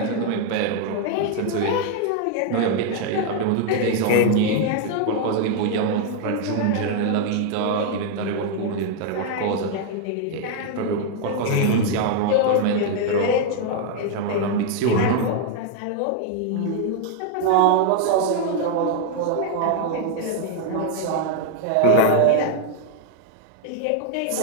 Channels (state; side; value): different; both; correlation 0.00